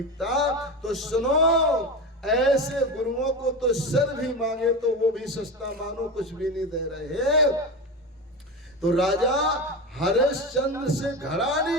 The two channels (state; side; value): normal; both; correlation 0.22